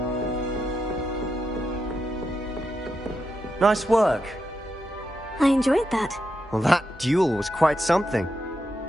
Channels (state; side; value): normal; both; correlation 0.85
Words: Nice work. I enjoyed that. Well, that duel was quite something.